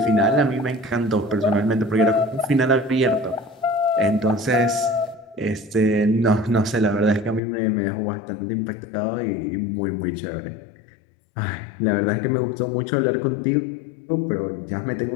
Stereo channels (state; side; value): drops out; right; at 7.4 s